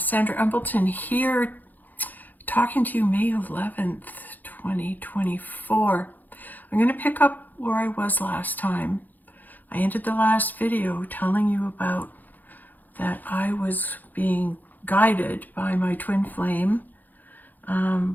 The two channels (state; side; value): late; right; 0.084 ms